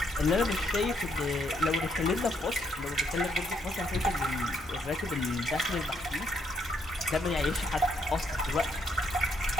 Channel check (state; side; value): normal; both; correlation 0.73